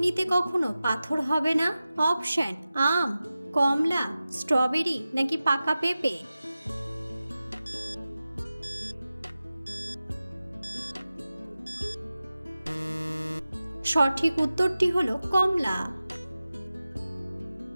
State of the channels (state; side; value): inverted; both; correlation -0.95